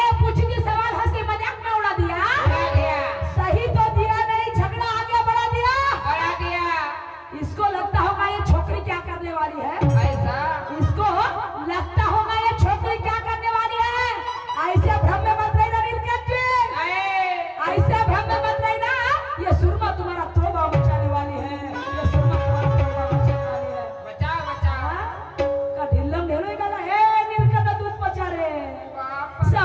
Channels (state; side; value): identical; both; correlation 1.00